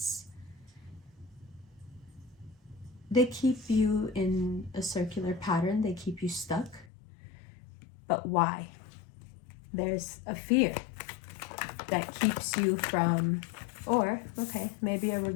They keep you in a circular pattern. They keep you stuck. But why? There's a fear that keeps you from, or, okay, maybe a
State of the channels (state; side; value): drops out; right; at 6.9 s